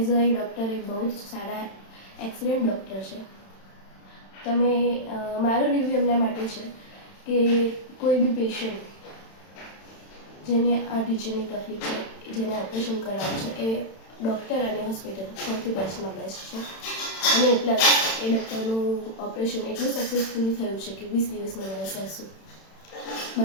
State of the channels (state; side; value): late; right; 31 ms